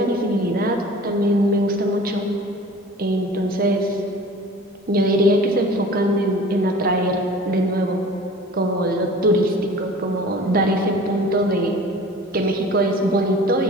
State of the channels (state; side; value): normal; both; correlation 0.43